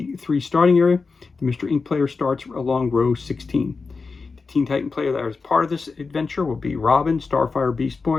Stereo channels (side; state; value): right; quieter; 4.4 dB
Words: starting area. The Mystery Inc. player starts along row 16. The Teen Titan player that was part of this adventure will be Robin, Starfire, Beast